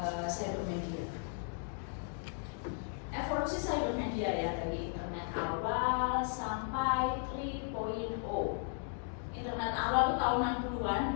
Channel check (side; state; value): right; silent; 54 dB below the other